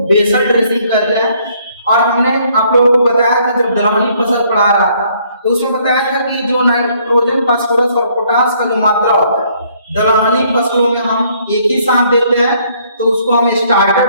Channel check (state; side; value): inverted; both; correlation -0.65